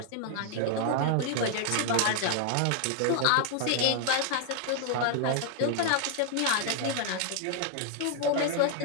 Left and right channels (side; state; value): both; different; correlation 0.00